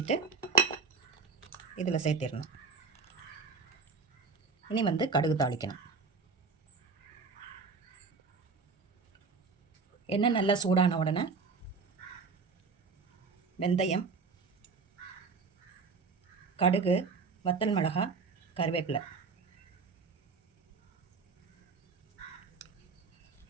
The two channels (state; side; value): quieter; left; 4.8 dB